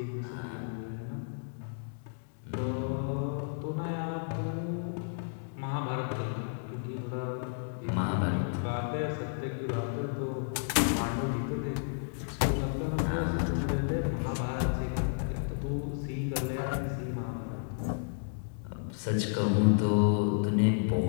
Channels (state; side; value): silent; right; digital silence